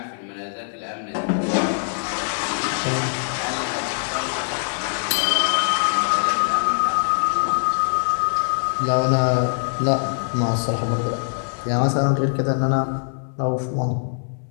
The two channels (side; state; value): right; silent; digital silence